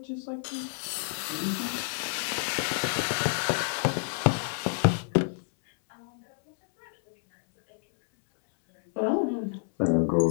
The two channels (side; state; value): right; silent; 59 dB below the other